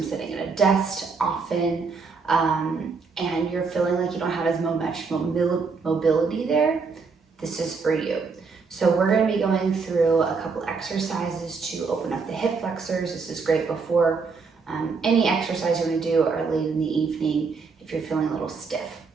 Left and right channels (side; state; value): left; quieter; 4.9 dB